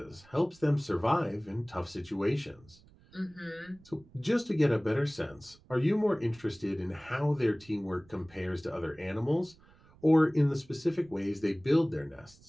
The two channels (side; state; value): right; noise; rumble, 27 dB below the sound